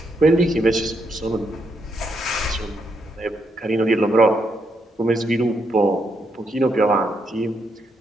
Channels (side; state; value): both; normal; correlation 0.78